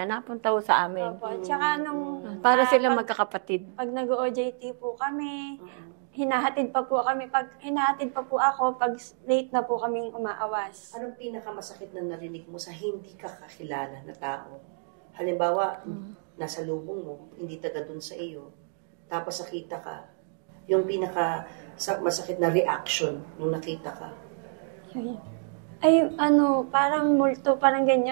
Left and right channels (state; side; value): silent; left; digital silence